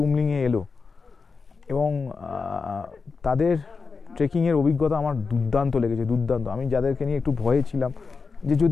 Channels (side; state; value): right; quieter; 4.8 dB